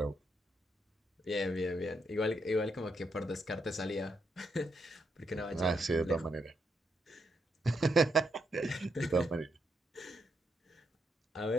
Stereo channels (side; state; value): both; normal; correlation 0.79